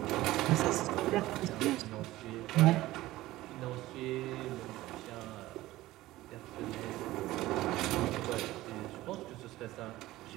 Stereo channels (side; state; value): left; quieter; 16.9 dB